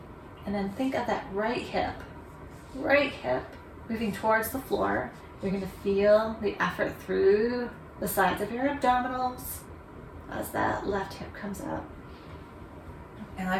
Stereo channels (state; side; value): identical; both; correlation 1.00